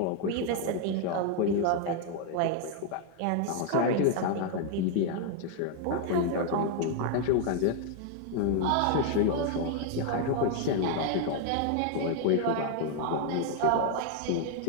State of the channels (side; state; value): both; different; correlation 0.00